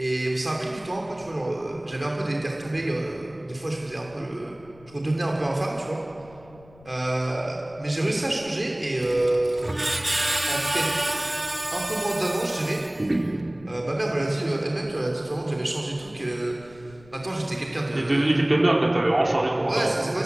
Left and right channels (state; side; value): noise; left; rumble, 24 dB below the sound